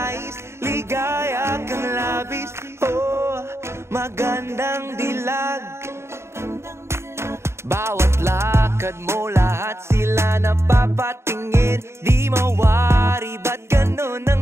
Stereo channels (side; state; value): left; late; 0.13 ms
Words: ligaya kang labis. Oh, magandang dilag. Bawat lakad mo, lahat sila napapatingin. Di mawari, ba't ganun